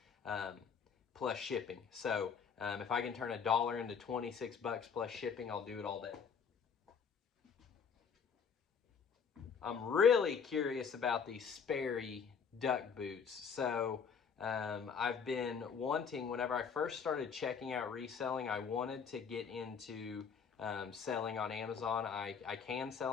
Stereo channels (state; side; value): quieter; right; 6.5 dB